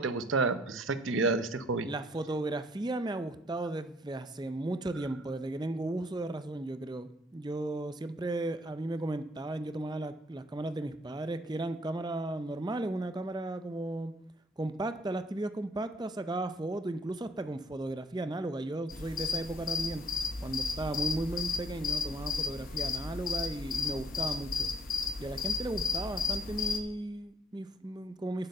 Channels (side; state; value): both; normal; correlation 0.64